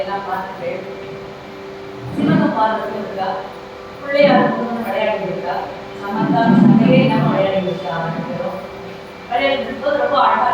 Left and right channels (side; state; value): both; identical; correlation 1.00